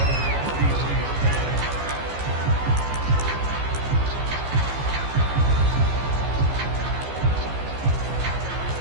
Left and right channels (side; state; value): left; late; 15 ms